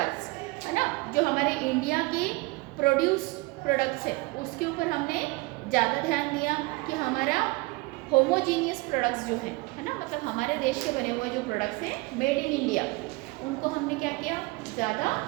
है ना, जो हमारे इंडिया के प्रोड्यूस प्रोडक्ट्स है उसके ऊपर हमने ज़्यादा ध्यान दिया कि हमारा होमोजीनियस प्रोडक्ट्स जो हैं, है ना, मतलब हमारे देश के बने हुए जो प्रोडक्ट्स हैं मेड इन इंडिया, उनको हमने क्या किया, ज़्यादा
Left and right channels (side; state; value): left; quieter; 23.8 dB